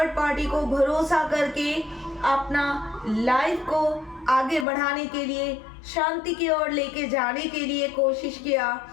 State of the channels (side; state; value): right; drops out; at 4.7 s